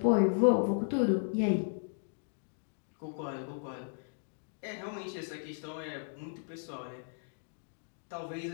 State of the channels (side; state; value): right; silent; digital silence